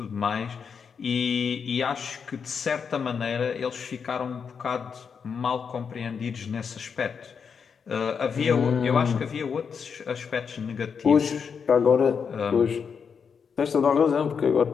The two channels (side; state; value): right; quieter; 6.4 dB